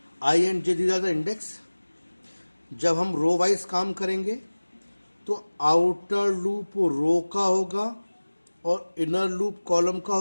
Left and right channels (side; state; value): both; inverted; correlation -1.00